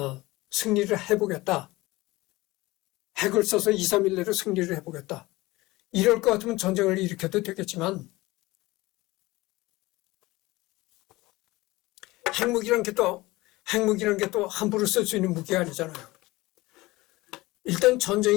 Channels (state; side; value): quieter; right; 20.2 dB